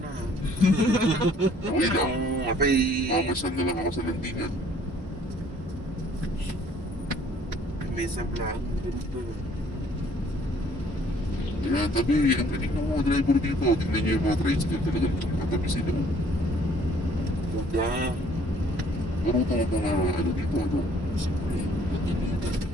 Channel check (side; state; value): both; normal; correlation 0.59